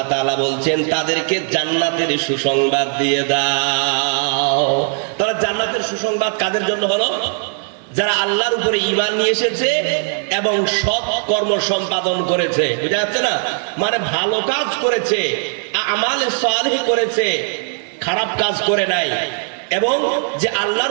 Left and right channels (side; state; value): left; silent; 56 dB below the other